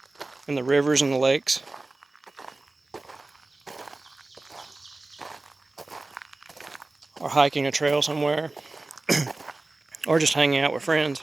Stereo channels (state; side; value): quieter; left; 3.1 dB